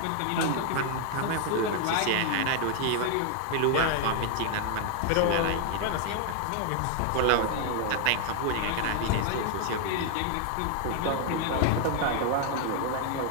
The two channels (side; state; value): both; different; correlation 0.00